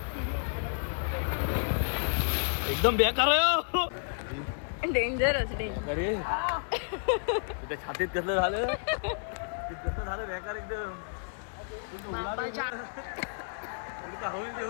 एकदम बेकार आहे. डेंजरस अरे छातीत कसलं झालं. कसलं झालं बेकार एकदम. बाबाच्या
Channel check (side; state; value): right; silent; 57 dB below the other